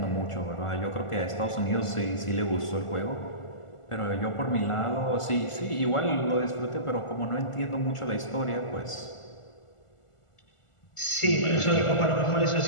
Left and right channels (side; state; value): right; late; 1.4 ms